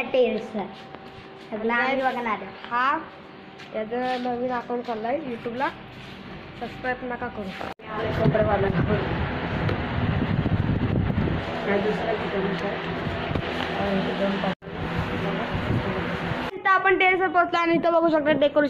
टेरेसला सगळं बघणार. हा याचं नवीन अकाउंट चाललाय यूट्यूबला. सबस्क्राईब नका करू. इथं आपण टेरेसवर पोहोचलो आणि इथं बघू शकता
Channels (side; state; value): both; identical; correlation 1.00